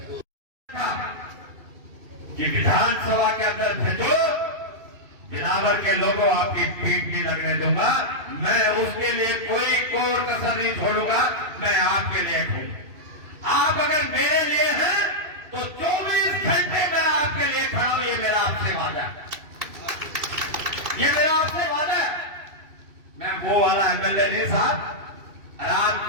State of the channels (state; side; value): late; left; 2.7 ms